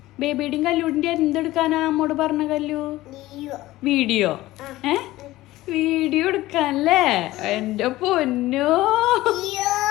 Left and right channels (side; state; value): right; quieter; 17.1 dB